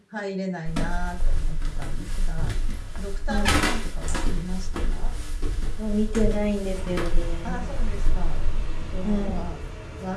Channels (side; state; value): both; identical; correlation 1.00